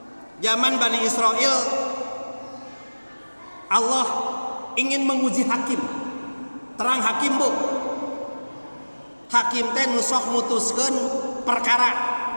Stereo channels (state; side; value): inverted; both; correlation -1.00